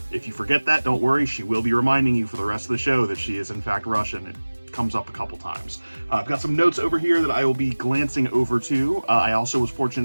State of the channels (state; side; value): inverted; both; correlation -1.00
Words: If you forget that, don't worry, she will be reminding you for the rest of the show that she is in fact Russian. It comes up a couple times. I've got some notes over here that I will be glancing over to. I also was fortunate